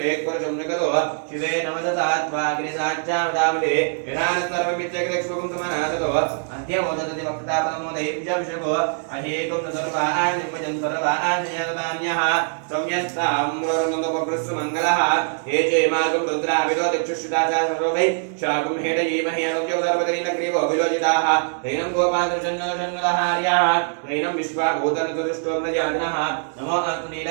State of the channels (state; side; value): silent; left; digital silence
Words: निगतो शिवे नमदतात्वा गिरिसाच्चामदामदे यथानस्तर्वमित्यग्रक्ष्वकं समनासतो अद्य मोदतति वक्तापदमोदयेभ्यभिषको अहेकं न सर्वान् निमजन् सर्वान् जयतान्यः संयस्ताम्रोर्नन्दोपकृत्सुमङ्गलः हे चेमागं रुद्राभिलो दिक्षुश्रुताचा सर्वै शाकं हेडयेमहि अनुज्ञो सर्वदरीलग्रीवो विलोचिताः तैनं गोपादृशन्नदहार्याः तैनं विश्वाभूतनतुष्टो प्रजानः नमो अस्तु